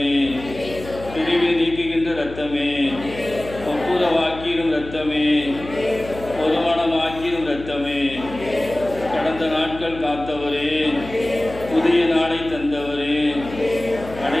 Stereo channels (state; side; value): noise; left; hum, 14 dB below the sound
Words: பிரிவை நீக்குகின்ற இரத்தமே ஒப்புரவாக்கிடும் இரத்தமே ஒருமனமாக்கிடும் இரத்தமே கடந்த நாட்கள் காத்தவரே புதிய நாளை தந்தவரே